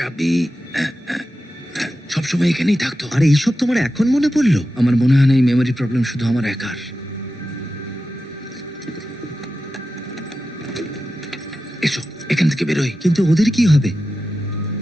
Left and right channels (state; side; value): normal; both; correlation 0.92